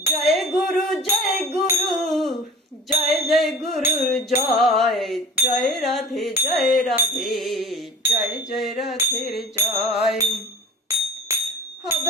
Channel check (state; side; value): normal; both; correlation 0.41